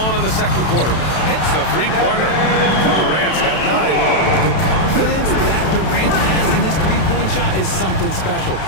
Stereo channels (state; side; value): late; right; 32 ms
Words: in the second quarter. Hits the 3-pointer. Durant's got 9. The confidence that Durant has in his 3-point shot is something special.